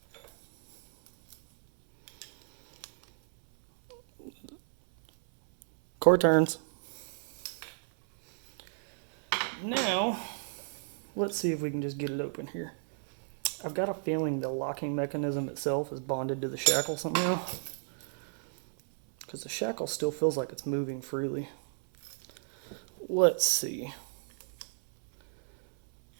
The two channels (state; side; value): silent; left; 56 dB below the other